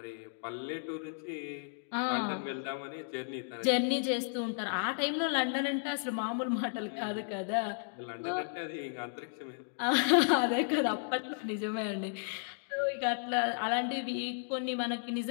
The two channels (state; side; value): silent; right; digital silence